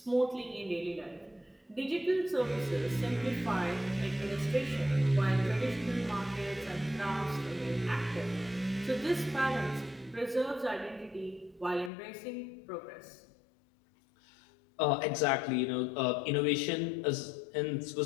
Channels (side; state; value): right; drops out; at 11.9 s